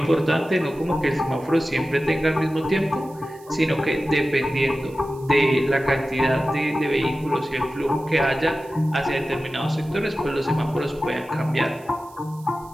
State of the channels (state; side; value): noise; right; hiss, 26 dB below the sound